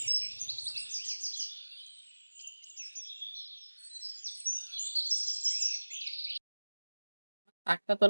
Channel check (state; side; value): inverted; both; correlation -1.00